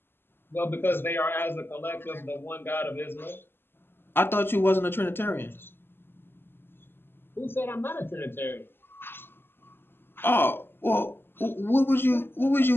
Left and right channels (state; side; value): late; right; 0.10 ms